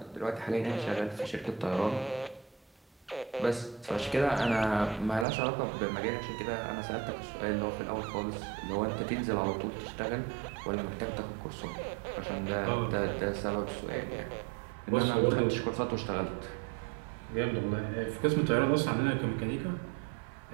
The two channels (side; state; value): left; drops out; at 5.2 s